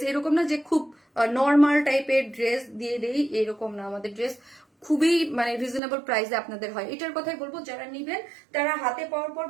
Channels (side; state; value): left; drops out; at 5.8 s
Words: এরকম না যে খুব নর্মাল টাইপের ড্রেস দিয়ে দেই, এরকম না। আমাদের ড্রেস খুবই মানে রিজনেবল প্রাইসে আপনাদের হয়। এটার কথাই বলবো, যারা নিবেন তারা হাতে পাওয়ার পর